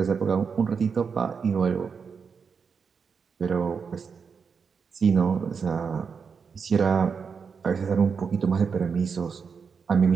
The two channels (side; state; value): left; quieter; 5.9 dB